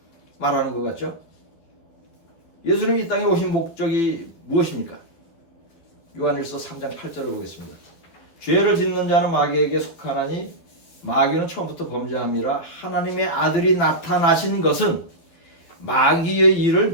말하는 것 같죠? 예수님이 이 땅에 오신 목적이 무엇입니까? 요한일서 3장 8절을 보겠습니다. 죄를 짓는 자는 마귀에게 속하나니 마귀는 처음부터 범죄함이라. 하나님의 아들이 나타나신 것은 마귀의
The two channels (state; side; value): late; right; 12 ms